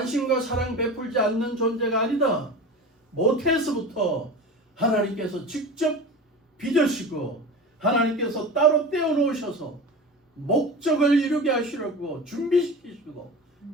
사랑 베풀지 않는 존재가 아니다. 모태에서부터 하나님께서 직접 빚으시고 하나님께서 따로 떼어놓으셔서 목적을 이루게 하시려고 준비시키시고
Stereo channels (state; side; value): normal; both; correlation 0.31